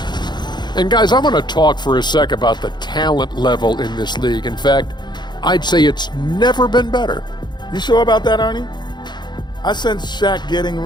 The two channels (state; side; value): late; right; 0.21 ms